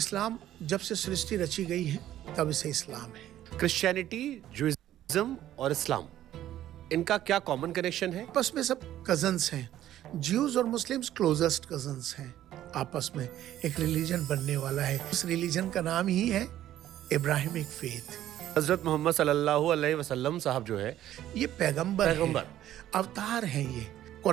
जब से सृष्टि रची गई है तब से इस्लाम है। क्रिश्चियनिटी, जुइज्म और इस्लाम, इनका क्या कॉमन कनेक्शन है? आपस में सब कजन्स हैं। ज्यूज और मुस्लिम्स क्लोजेस्ट कजन्स हैं। आपस में एक रिलीजन बनने वाला है। उस रिलीजन का नाम ही है इब्राहिमिक फेथ। हजरत मोहम्मद सल्लल्लाहु अलैहि वसल्लम साहब जो है, ये पैगंबर है, अवतार हैं। ये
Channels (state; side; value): quieter; left; 12.7 dB